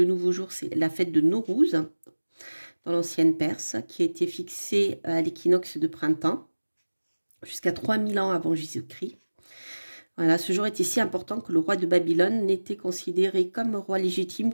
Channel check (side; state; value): both; inverted; correlation -1.00